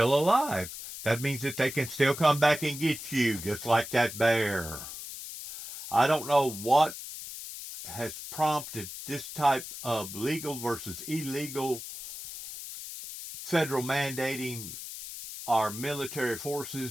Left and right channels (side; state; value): left; noise; hiss, 10 dB below the sound